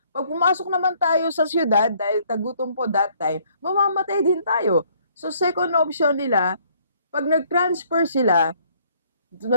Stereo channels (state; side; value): inverted; both; correlation -0.63